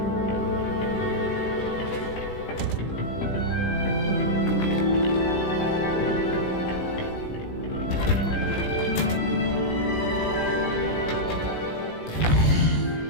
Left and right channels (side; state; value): right; late; 18 ms